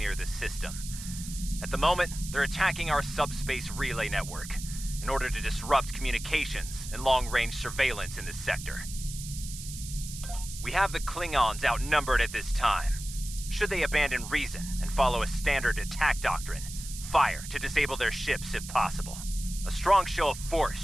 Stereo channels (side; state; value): right; noise; hiss, 11 dB below the sound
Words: the system. At the moment, they're attacking our subspace relay network in order to disrupt communications and long-range surveillance in this sector. We have the Klingons outnumbered at this time. Should they abandon reason and follow a standard attack doctrine, fire to disable their ships if possible. A strong show of force